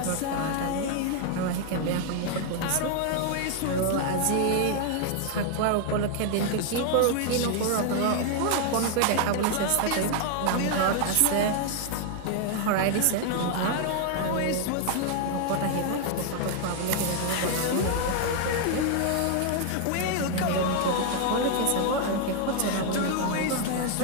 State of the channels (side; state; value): both; different; correlation 0.00